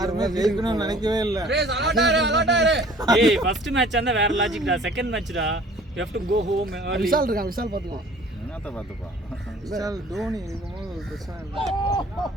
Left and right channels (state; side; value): normal; both; correlation 0.51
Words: ஜெயிக்கணும்னு நினைக்கவே இல்லை. ஏய் ஃபர்ஸ்ட் மேட்ச் அந்த வேற லாஜிக்டா. செகண்ட் மேட்ச்டா you have to go home. Vishal இருக்கான். விஷால் பாத்துக்கலாம். என்னத்த பாத்துப்பா. விஷால் தோனி இருக்கும்போது ஒரு பிரச்சனை இல்லை.